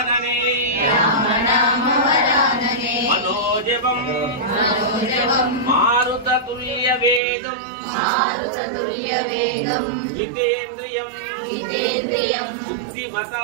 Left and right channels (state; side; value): drops out; left; at 7.2 s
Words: మనోజవం మారుతతుల్య వేగం జితేంద్రియం